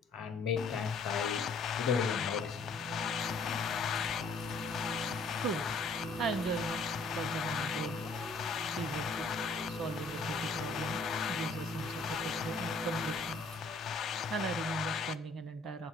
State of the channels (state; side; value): quieter; right; 3.4 dB